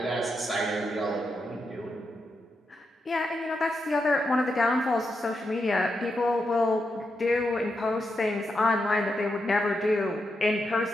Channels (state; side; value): normal; both; correlation 0.85